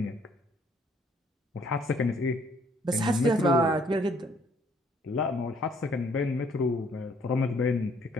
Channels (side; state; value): both; normal; correlation 0.63